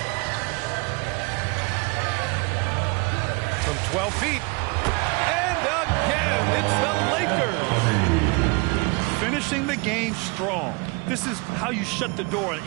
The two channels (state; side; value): quieter; left; 28.0 dB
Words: From 12 feet. And again, it's the Lakers. Finishing the game strong. This is how you shut the door on